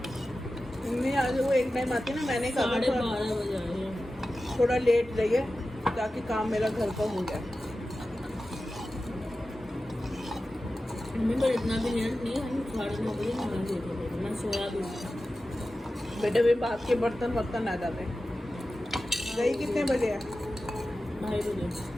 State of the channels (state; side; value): normal; both; correlation 0.94